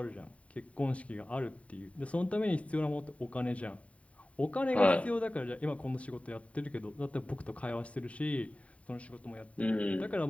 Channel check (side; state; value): right; late; 0.066 ms